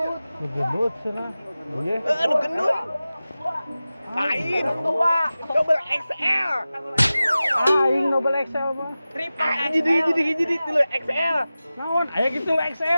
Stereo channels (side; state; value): both; inverted; correlation -0.96